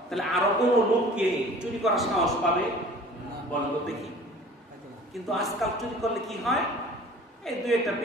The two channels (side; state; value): both; normal; correlation 0.46